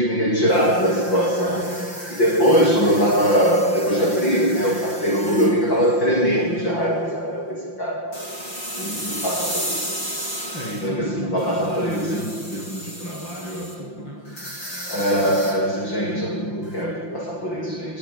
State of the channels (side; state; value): right; late; 5.8 ms